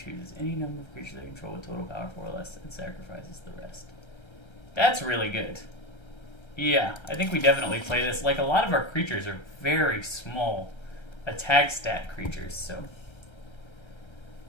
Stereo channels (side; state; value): right; late; 1.3 ms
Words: any number of creatures they control with total power 4 or less and sacrifices the rest. That's really good. Yeah, I think we definitely play this. Like, a lot of our creatures are very small attack stat creatures, so